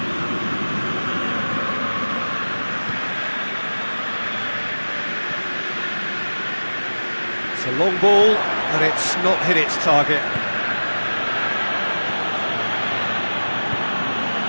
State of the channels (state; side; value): inverted; both; correlation -1.00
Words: It's a long ball, and it's not hit its target.